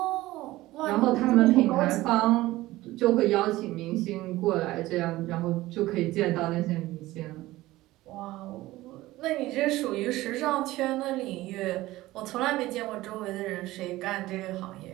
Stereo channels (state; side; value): quieter; left; 17.5 dB